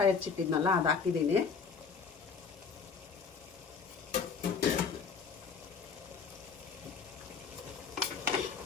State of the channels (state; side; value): quieter; right; 5.6 dB